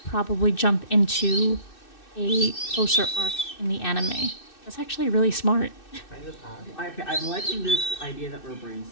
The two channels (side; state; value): right; late; 2.6 ms